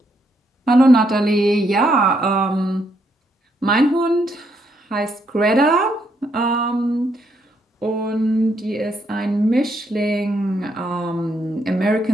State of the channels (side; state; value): both; normal; correlation 0.75